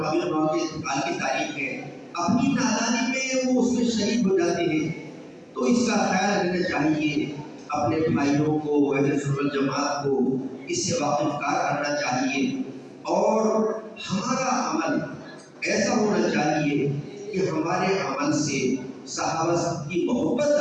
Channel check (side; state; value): both; identical; correlation 1.00